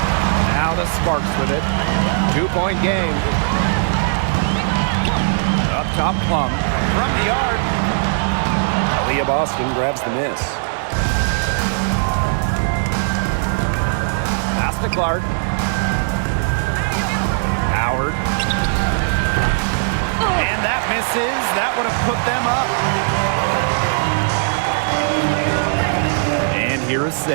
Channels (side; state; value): left; silent; digital silence